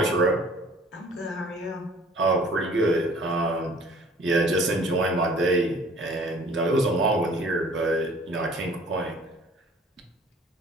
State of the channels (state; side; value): normal; both; correlation 0.52